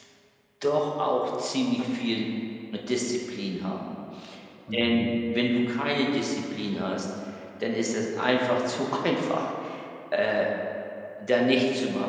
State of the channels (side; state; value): both; identical; correlation 1.00